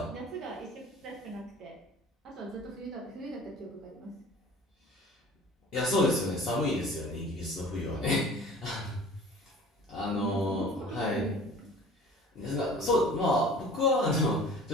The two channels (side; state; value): both; normal; correlation 0.44